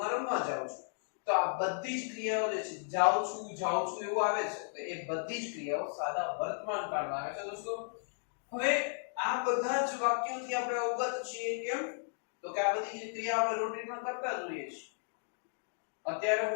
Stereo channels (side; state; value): right; silent; digital silence